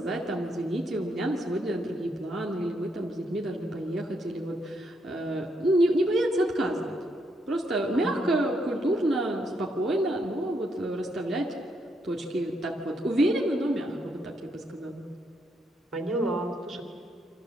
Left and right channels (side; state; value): both; normal; correlation 0.76